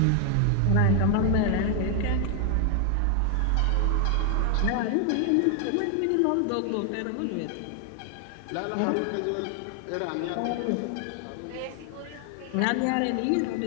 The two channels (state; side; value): different; both; correlation 0.00